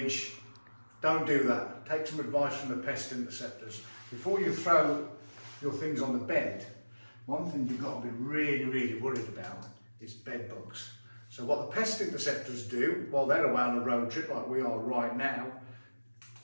Don't do that. Take some advice from the pest interceptors. Before you throw your things on the bed, one thing you've got to be really worried about is bed bugs. So what the pest interceptors do, while they're away on a road trip like we are right now,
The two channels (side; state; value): both; inverted; correlation -1.00